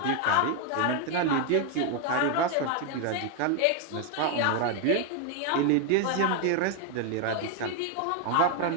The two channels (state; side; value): different; both; correlation 0.01